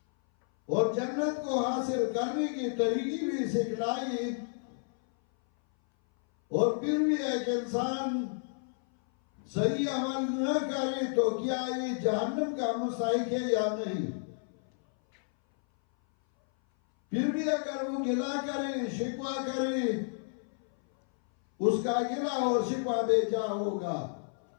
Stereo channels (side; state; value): right; silent; 57 dB below the other